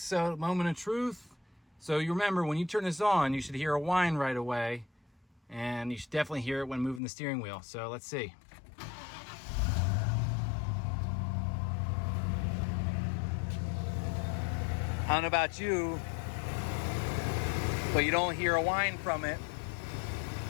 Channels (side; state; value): right; drops out; at 7.0 s